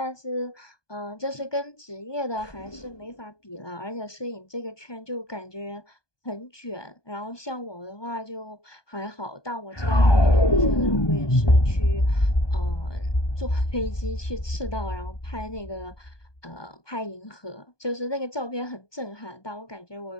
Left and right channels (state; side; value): late; right; 1.2 ms